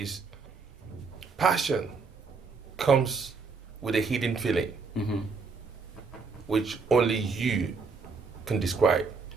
passion comes with a hidden feeling, which only you can describe.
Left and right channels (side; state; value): left; quieter; 4.8 dB